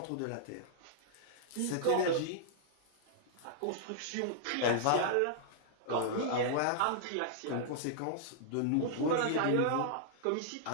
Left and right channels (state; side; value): different; both; correlation -0.01